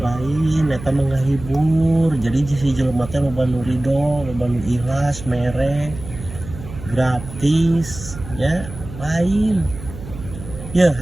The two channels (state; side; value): noise; right; hum, 13 dB below the sound